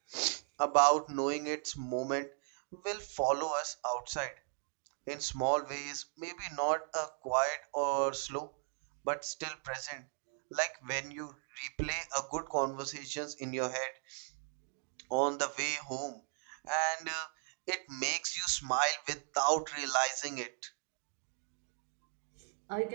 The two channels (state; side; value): silent; left; 53 dB below the other